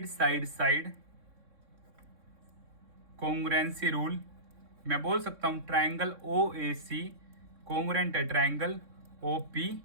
side side congruency rule मैं बोल सकता हूँ triangle O A C congruent है ट्रायंगल ओ पी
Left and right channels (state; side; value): late; left; 3.6 ms